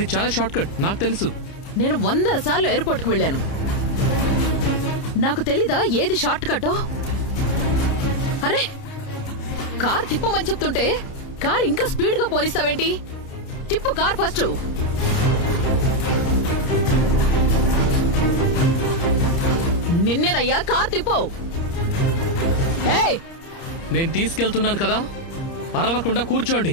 చాలా షార్ట్ కట్, నాకు తెలుసు. నేను 100 సార్లు ఎయిర్పోర్ట్ కి వెళ్ళాను. నాకు తెలీదా ఏది షార్ట్ కట్టో? అరే, కార్ తిప్పమని చెప్తుంటే కార్ ఇంకా స్పీడ్ గా పోనిస్తావేంటి? తిప్పు కార్ ఫస్ట్. నిన్నేనయ్యా, కార్ తిప్పు. ఏయ్, నేను తీసుకెళ్తున్నాను కదా, అరవకుండా కూర్చోండి.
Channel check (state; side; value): late; right; 30 ms